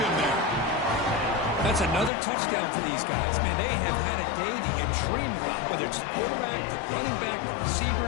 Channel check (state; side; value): drops out; right; at 2.1 s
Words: there. That's another touchdown for these guys. Man, they have had a day that you dream about, whether it's the quarterback, the running back, the